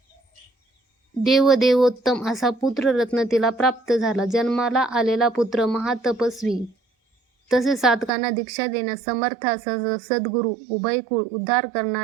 देवोत्तम असा पुत्ररत्न तिला प्राप्त झाला. जन्माला आलेला पुत्र महातपस्वी तसेच साधकांना दीक्षा देण्यास समर्थ असा सद्गुरू, उभयकुळ उद्धार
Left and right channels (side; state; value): left; drops out; at 8.1 s